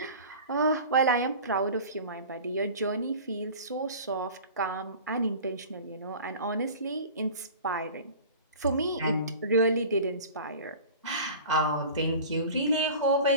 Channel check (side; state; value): both; inverted; correlation -0.39